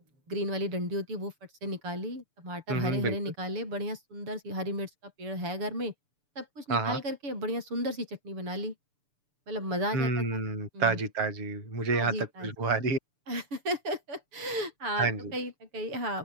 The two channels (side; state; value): left; late; 6.9 ms